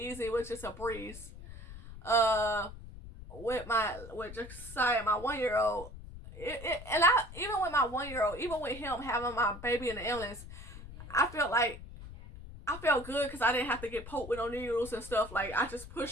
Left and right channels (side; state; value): left; noise; rumble, 14 dB below the sound